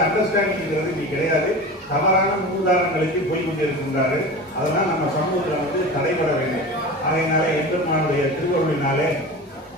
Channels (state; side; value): normal; both; correlation 0.32